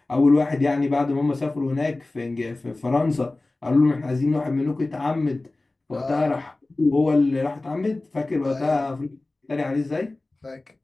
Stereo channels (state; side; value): quieter; right; 3.0 dB